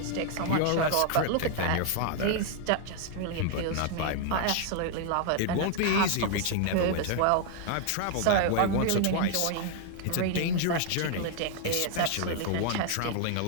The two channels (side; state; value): both; different; correlation 0.00